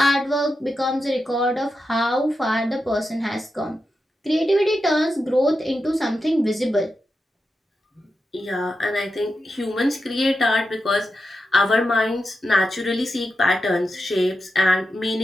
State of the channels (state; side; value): normal; both; correlation 0.89